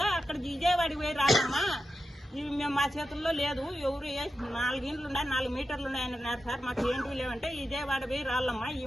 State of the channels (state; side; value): normal; both; correlation 0.90